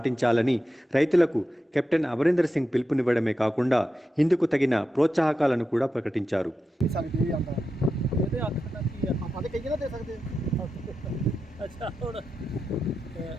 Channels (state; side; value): normal; both; correlation 0.89